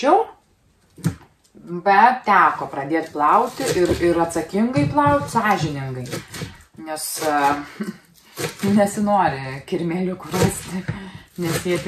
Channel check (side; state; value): both; identical; correlation 1.00